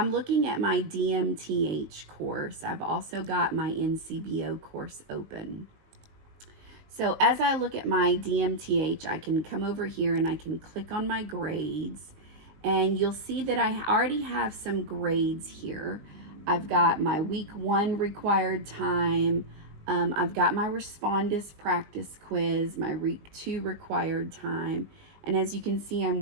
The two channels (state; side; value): late; left; 19 ms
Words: looking at my DMTH course. I've also got my NCBO course open. So as I look at my DMTH, I can come over here and I can click on my grades, and you'll see that I already have some grades here. I've got my week 1 required time. I've got my Respondus practice quiz, my week 2 required time. And as you can see, I'm